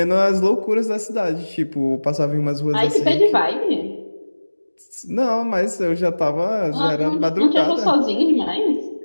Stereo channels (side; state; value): both; inverted; correlation -1.00